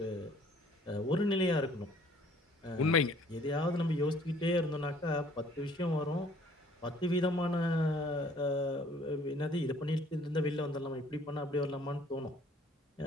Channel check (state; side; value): normal; both; correlation 0.57